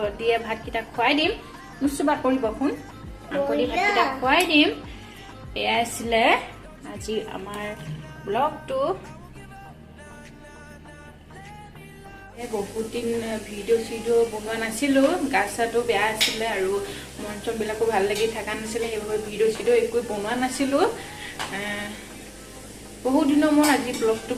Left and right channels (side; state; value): both; identical; correlation 1.00